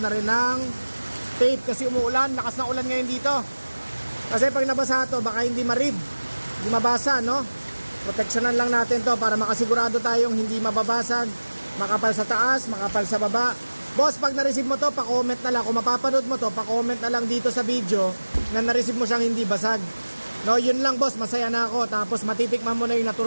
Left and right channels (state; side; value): inverted; both; correlation -1.00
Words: na rin ng tape kasi umuulan. Lakas ng ulan ngayon dito. Kasi pag nabasa to, baka hindi ma-read, hindi mabasa, no? Proteksyonan lang natin to para makasigurado tayong hindi mababasag, makapal sa taas, makapal sa baba. Boss, pag na-receive mo to, pa-comment na lang. Kung mapapanood mo to, pa-comment na lang dito sa video na na-receive mo siyang hindi basag. No, yun lang, boss, masaya na ako. Tapos matitikman mo na yung